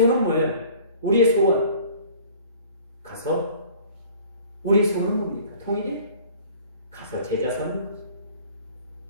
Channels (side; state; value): both; inverted; correlation -0.49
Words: 뭐예요? 우리의 소원. 가서 우리의 소원은 뭡니까? 통일이? 가서 제자 삼는 거죠.